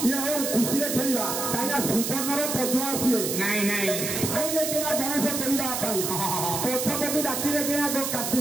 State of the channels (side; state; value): right; noise; hiss, 2 dB below the sound